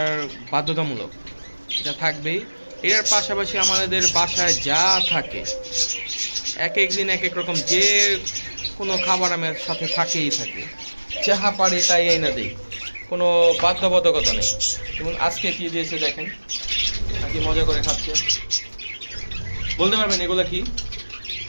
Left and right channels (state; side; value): inverted; both; correlation -1.00